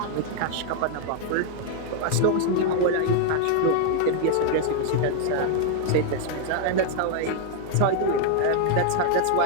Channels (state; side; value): different; both; correlation 0.00